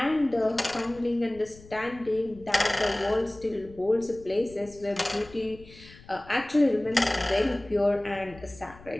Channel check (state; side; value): noise; left; rumble, 21 dB below the sound